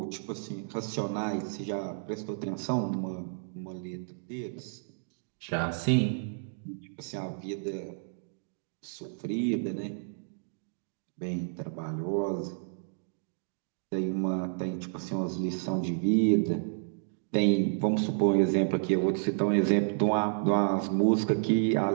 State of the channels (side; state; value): left; silent; digital silence